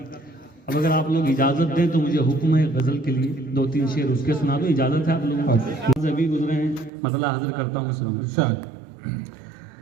अब अगर आप लोग इजाज़त दें तो मुझे हुक्म है गज़ल के लिए 2-3 शेर उसके सुना दो, इजाज़त है आप लोगों को? अभी गुजरे हैं, मतलब हाजिर करता हूँ सुनो।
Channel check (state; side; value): drops out; left; at 6.9 s